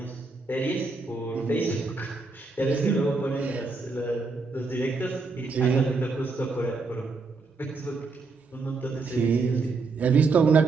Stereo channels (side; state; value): left; quieter; 4.0 dB